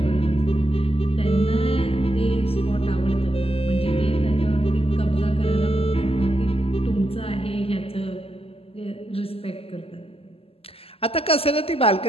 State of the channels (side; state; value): right; late; 0.28 ms